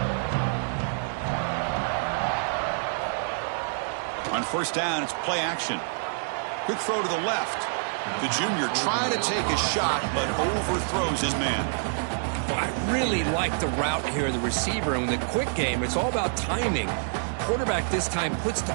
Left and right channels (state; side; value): silent; left; digital silence